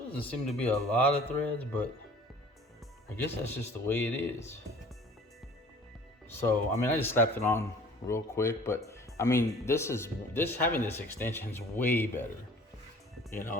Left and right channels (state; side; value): normal; both; correlation 0.48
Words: doesn't seem to be a lot of threads, but I guess that's just the way it is. So, I mean, I just slapped it on real quick, but I mean, having this extension is way better. You know,